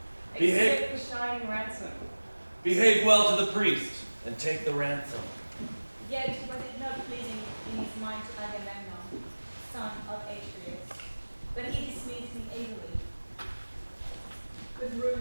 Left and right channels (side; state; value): both; inverted; correlation -1.00